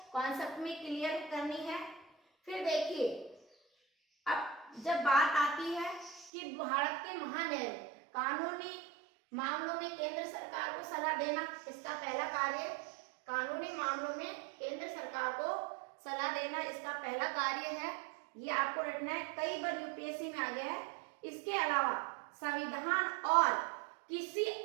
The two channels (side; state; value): left; drops out; at 6.3 s